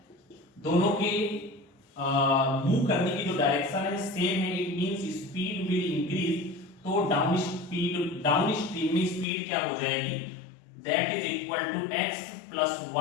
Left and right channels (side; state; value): right; drops out; at 9.2 s